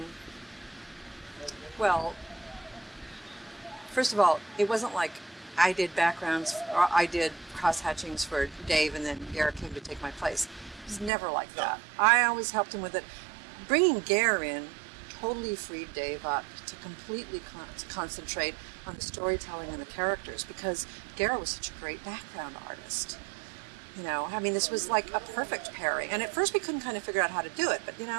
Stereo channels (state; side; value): drops out; left; at 11.1 s